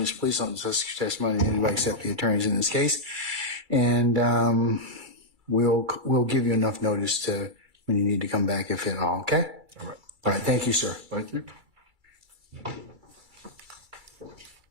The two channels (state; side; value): late; left; 2.3 ms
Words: Please don't discuss your testimony to anybody except the attorneys in this case. And we'll give you enough notice to when you need to come back, if at all. Okay? All right. All right. Thank you, sir. Thank you.